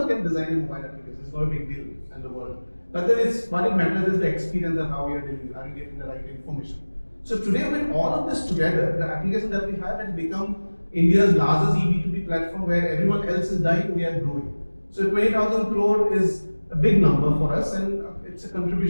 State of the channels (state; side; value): inverted; both; correlation -1.00